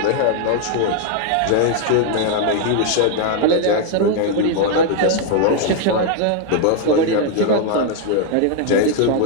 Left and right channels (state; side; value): different; both; correlation 0.00